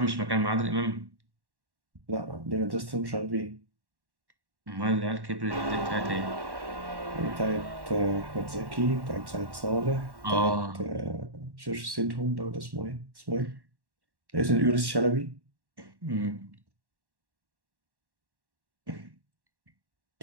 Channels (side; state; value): left; late; 1.1 ms